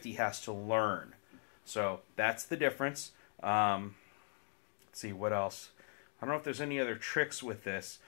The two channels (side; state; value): right; silent; 51 dB below the other